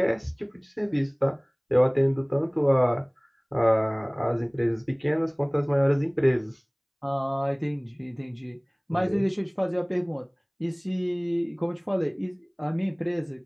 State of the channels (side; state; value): both; identical; correlation 1.00